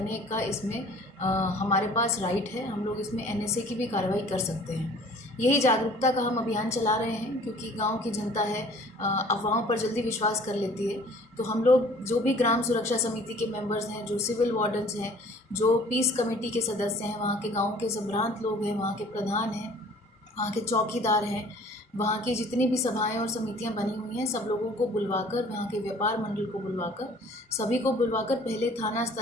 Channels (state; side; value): normal; both; correlation 0.51